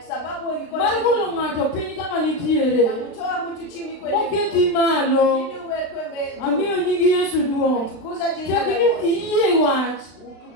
sababu iko mar golo ng'ato piny kama nitiere. Mtu chini kwenye moketi malo. Ili uwekwe mbele. Amiyo nyingi Yesu duong'. Tukuza jina la Yesu. Iyie wach.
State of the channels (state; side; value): late; right; 35 ms